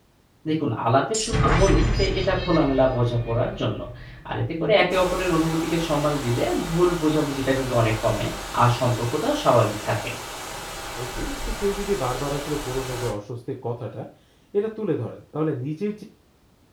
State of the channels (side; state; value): both; identical; correlation 1.00